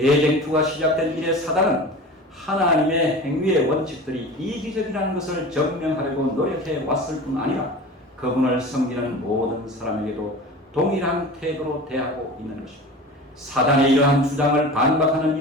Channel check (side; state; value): both; normal; correlation 0.35